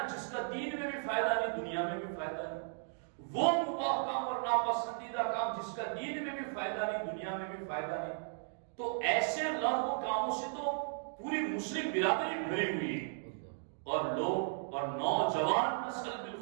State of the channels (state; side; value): silent; left; digital silence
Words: جس کا دین میں بھی فائدہ نہیں دنیا میں بھی فائدہ نہیں، وہ مباح کام اور ناپسندیدہ کام جس کا دین میں بھی فائدہ نہیں دنیا میں بھی فائدہ نہیں۔ تو ایسے لغو کاموں سے تو پوری مسلم برادری بھری ہوئی ہے، اور لوگ اور نوجوان نسل